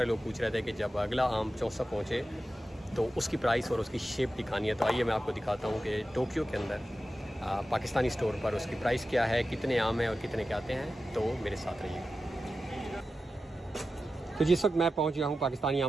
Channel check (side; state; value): both; normal; correlation 0.93